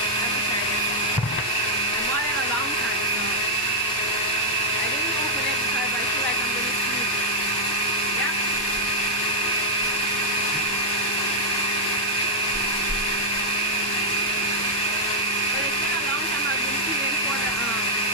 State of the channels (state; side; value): normal; both; correlation -0.04